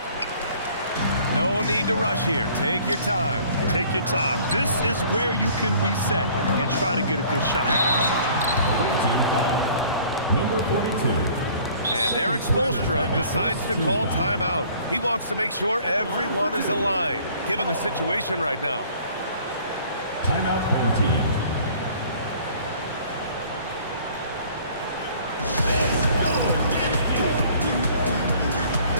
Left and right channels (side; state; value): both; inverted; correlation -0.53